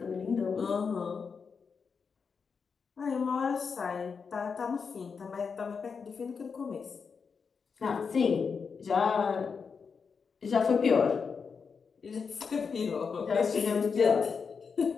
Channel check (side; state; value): right; quieter; 5.6 dB